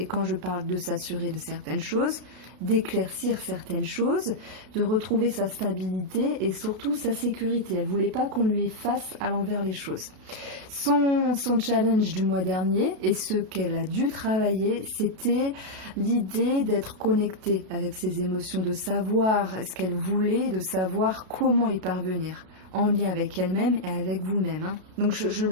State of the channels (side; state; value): left; late; 32 ms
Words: quand je parle de s'assurer de certaines choses, d'éclaircir certaines choses, de retrouver sa stabilité et surtout sa sécurité. Elle ne voulait pas qu'on lui fasse à l'envers les choses. Son challenge du mois dernier et ce qu'elle a dû travailler, c'était l'idée d'être connectée avec ses émotions, de savoir ce qu'elle voulait, de savoir comment y parvenir, en lien avec elle-même et avec vous-même. Hein. Donc je